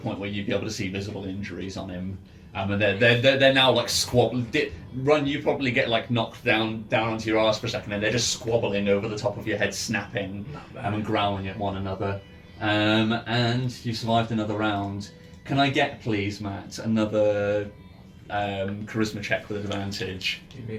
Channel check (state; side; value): identical; both; correlation 1.00